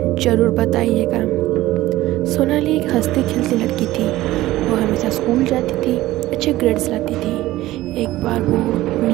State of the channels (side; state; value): left; quieter; 16.4 dB